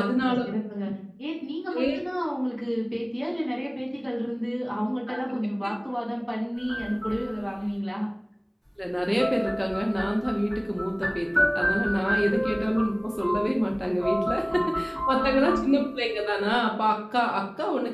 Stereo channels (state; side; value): identical; both; correlation 1.00